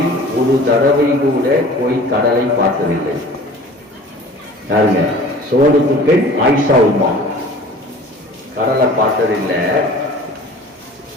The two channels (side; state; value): both; normal; correlation 0.44